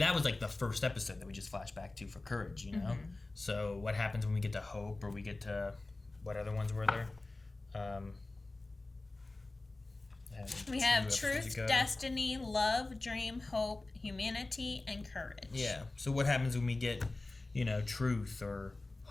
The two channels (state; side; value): quieter; right; 3.1 dB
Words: was like the first episode that we just flashed back to for Courage, you know? So what happens when we get to Hope, or we get to what other ones were there? We have Truth, Destiny, Love, Dream, Hope, Humanity, and Courage. Yeah. So what happens when we get, you know, Truth or